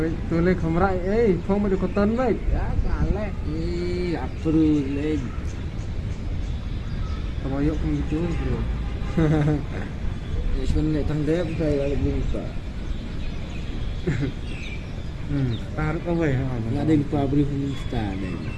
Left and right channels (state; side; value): identical; both; correlation 1.00